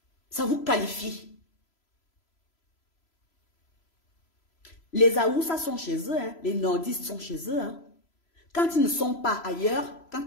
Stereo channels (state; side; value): late; right; 3.0 ms